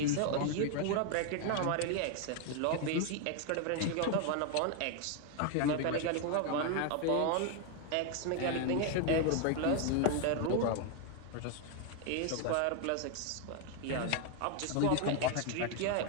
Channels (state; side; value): different; both; correlation 0.01